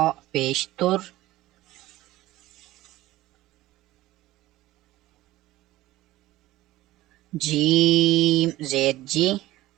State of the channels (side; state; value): left; quieter; 16.8 dB